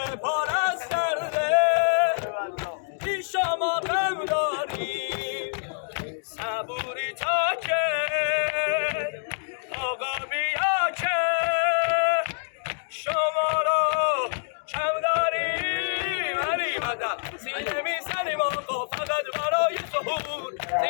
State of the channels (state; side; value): silent; right; digital silence